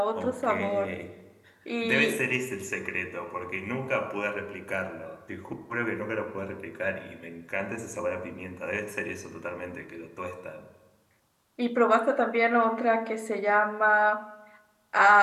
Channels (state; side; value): identical; both; correlation 1.00